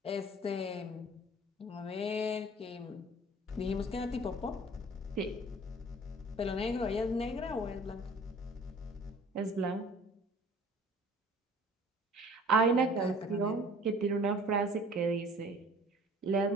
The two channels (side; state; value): both; normal; correlation 0.49